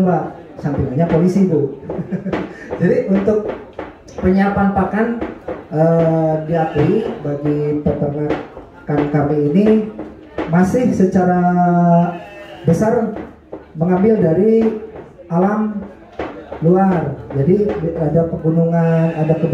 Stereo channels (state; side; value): identical; both; correlation 1.00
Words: sampingannya polisi Bu. Jadi untuk penyiapan pakan diakui bagi peternakan kami ini masih secara besar mengambil dari alam luar. Jadi ada pegunungan, ada